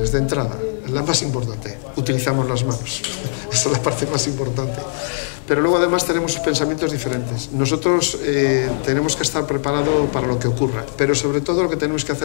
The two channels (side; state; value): right; silent; 63 dB below the other